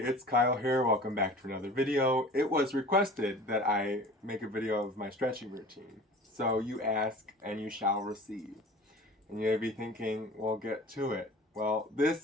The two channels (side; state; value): both; normal; correlation 0.41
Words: Kyle here. Welcome back to another video. It was requested that I make a video of my stretching routine. So you ask and you shall receive. And you may be thinking, well, get to it. Well,